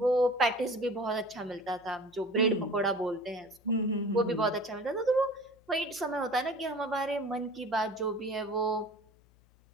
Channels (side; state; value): left; noise; hum, 30 dB below the sound